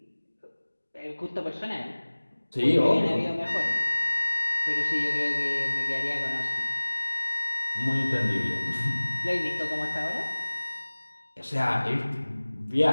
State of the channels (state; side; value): inverted; both; correlation -1.00